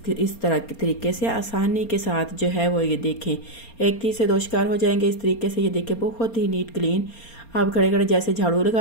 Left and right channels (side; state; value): right; late; 4.3 ms